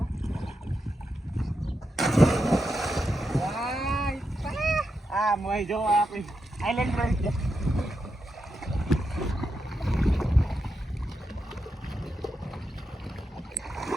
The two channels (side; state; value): both; normal; correlation 0.86